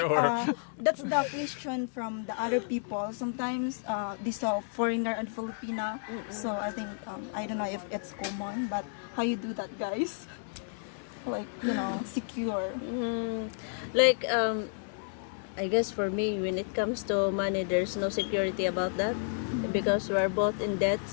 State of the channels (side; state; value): right; silent; 57 dB below the other